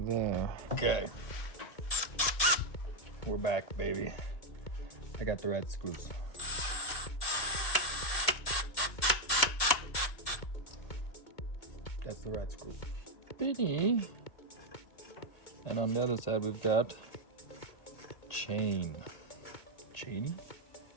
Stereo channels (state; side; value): late; right; 1.8 ms